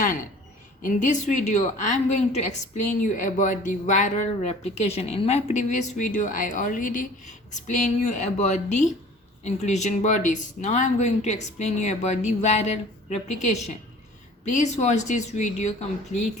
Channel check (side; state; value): both; normal; correlation 0.47